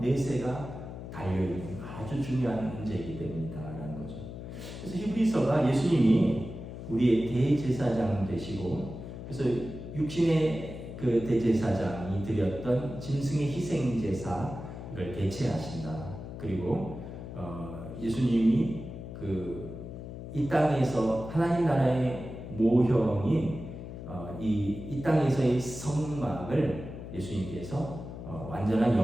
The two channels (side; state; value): left; noise; hum, 10 dB below the sound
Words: 달려있는 아주 중요한 문제이기 때문이다라는 거죠. 그래서 히브리서가 예수님이 우리의 대제사장 되시고, 그래서 육신의 그 대제사장이 드렸던 짐승의 희생 제사를 대체하신다. 그리고 예수님이 이 땅에서 하나님 나라의 모형인 이 땅에서의 성막을 예수님께서 완전한